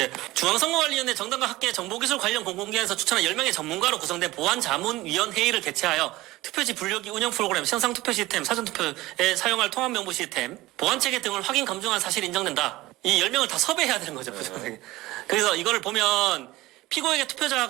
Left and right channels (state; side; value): quieter; left; 18.5 dB